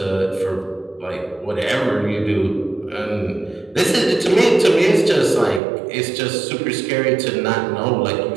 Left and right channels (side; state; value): left; drops out; at 5.6 s